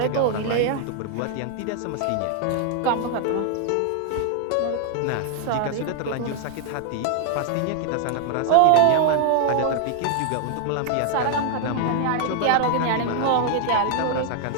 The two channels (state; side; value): different; both; correlation 0.00